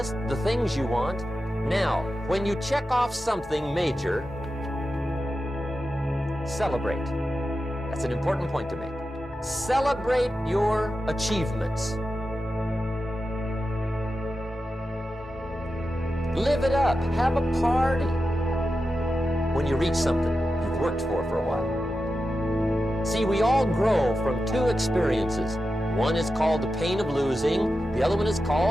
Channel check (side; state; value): both; normal; correlation 0.91